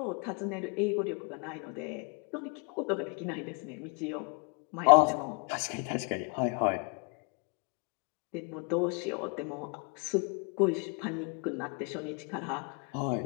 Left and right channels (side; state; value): right; quieter; 36.2 dB